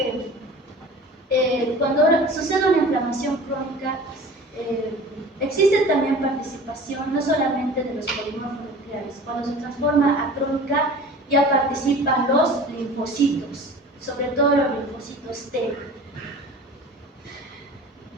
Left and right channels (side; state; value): both; normal; correlation 0.41